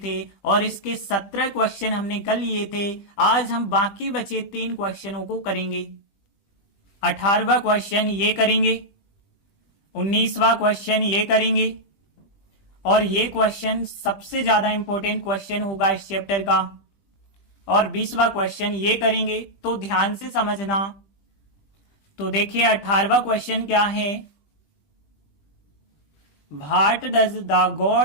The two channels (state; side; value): late; right; 20 ms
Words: और इसके 17 क्वेश्चन हमने कर लिए थे। आज हम बाकी बचे 3 क्वेश्चनों को करेंगे। 18वां क्वेश्चन ये करेंगे, 19वां क्वेश्चन ये करेंगे और ये क्वेश्चन सबसे ज्यादा इंपॉर्टेंट क्वेश्चन होगा इस चैप्टर का। और 20वां क्वेश्चन ये करेंगे, तो ध्यान से समझना। तो देखिए 18वां क्वेश्चन क्या है। What does the